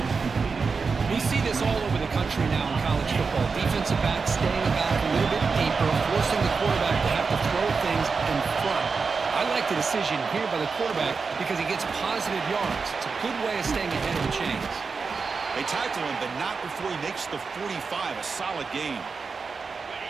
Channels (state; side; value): quieter; left; 4.9 dB